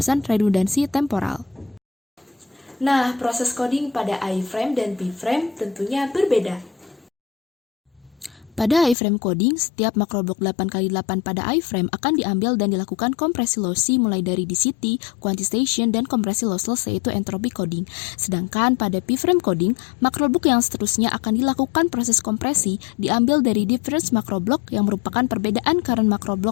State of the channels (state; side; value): drops out; right; at 9.0 s